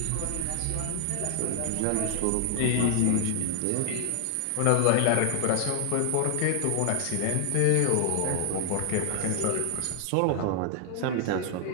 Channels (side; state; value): both; different; correlation 0.00